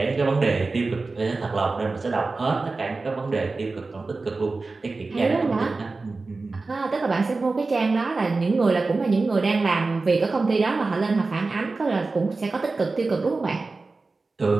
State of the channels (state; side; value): quieter; left; 3.7 dB